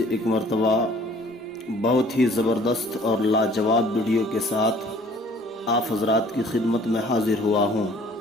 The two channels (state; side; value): normal; both; correlation 0.54